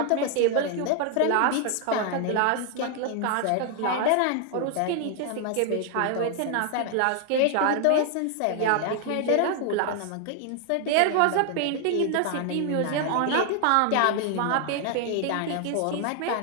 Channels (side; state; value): both; different; correlation 0.00